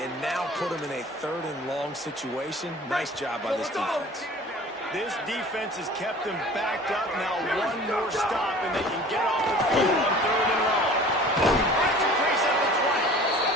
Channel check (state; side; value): normal; both; correlation 0.45